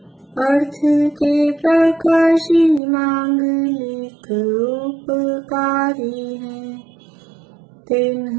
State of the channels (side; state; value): left; drops out; at 2.8 s